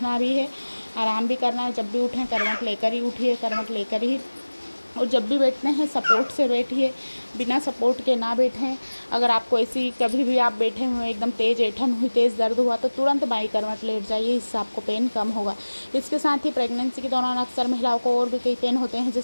भी है, आराम भी करना है। जब भी उठें करवट लेकर ही उठिए, करवट लेकर ही, और जब भी बैठते हैं सपोर्ट से बैठिए, बिना सपोर्ट के ना बैठें। अगर आपको ऐसी कभी भी आप बैठे हुए एकदम तेज़ ऐंठन हुई, तेज़ दर्द हुआ, तो तुरंत बाई करवट लेट जाइए, इससे आपको पेन कम होगा। इसके साथ ही प्रेगनेंसी के दौरान अक्सर महिलाओं को और भी कई पेन होते हैं,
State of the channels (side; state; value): both; inverted; correlation -1.00